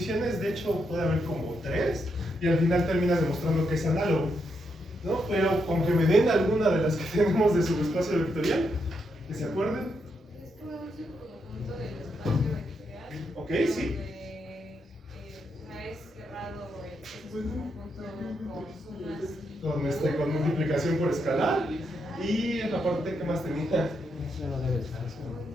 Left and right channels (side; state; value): both; normal; correlation 0.81